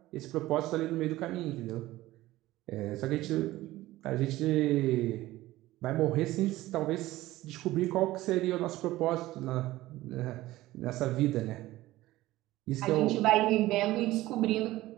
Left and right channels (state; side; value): quieter; left; 16.9 dB